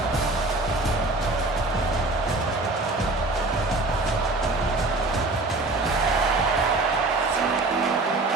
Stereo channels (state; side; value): quieter; left; 3.1 dB